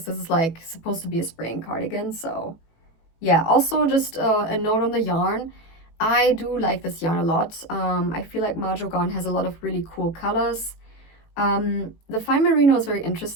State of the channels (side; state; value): right; late; 18 ms